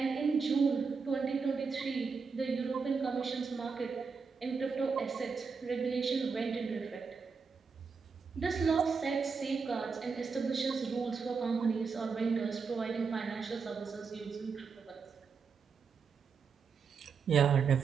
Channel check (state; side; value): quieter; left; 5.3 dB